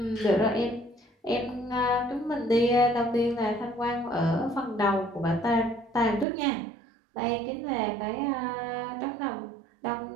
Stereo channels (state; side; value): drops out; left; at 6.2 s